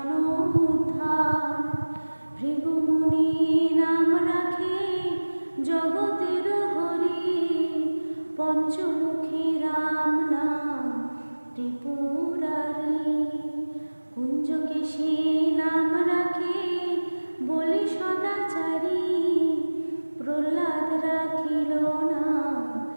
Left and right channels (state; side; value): inverted; both; correlation -1.00